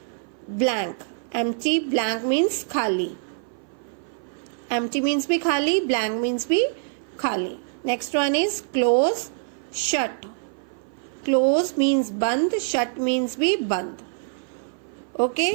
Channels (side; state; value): left; silent; 57 dB below the other